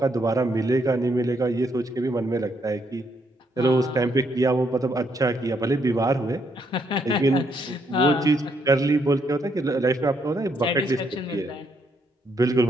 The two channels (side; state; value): both; normal; correlation 0.74